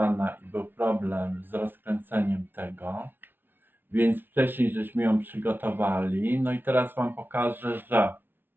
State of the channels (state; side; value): late; left; 0.098 ms